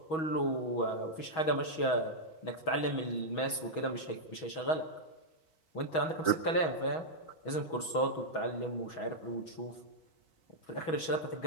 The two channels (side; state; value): right; late; 6.2 ms